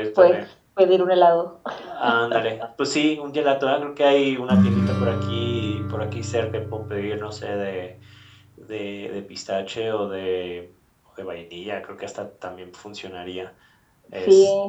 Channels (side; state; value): both; identical; correlation 1.00